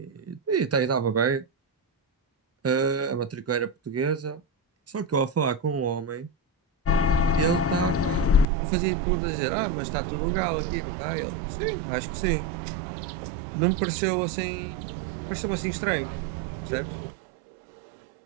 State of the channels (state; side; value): drops out; left; at 8.5 s